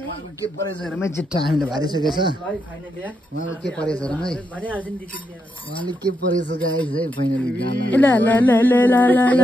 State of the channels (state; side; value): normal; both; correlation 0.81